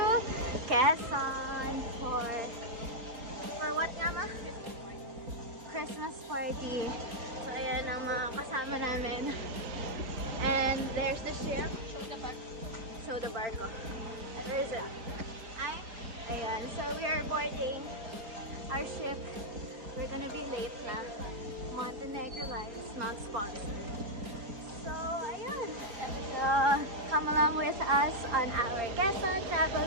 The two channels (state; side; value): late; left; 4.3 ms